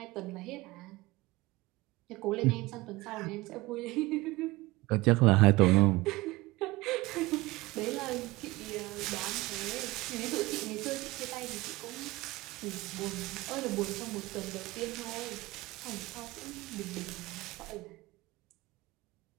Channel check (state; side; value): quieter; left; 21.4 dB